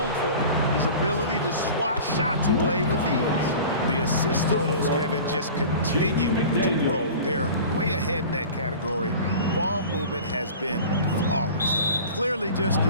for, his ability to swat shots away with ease. The assist totals, Kevin, just continue to grow. They're way ahead in that category. Ball movement has been flawless. Clearly just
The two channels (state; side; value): inverted; both; correlation -0.38